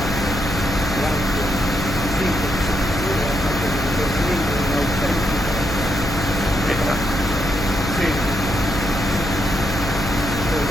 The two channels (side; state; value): left; noise; hum, 6 dB below the sound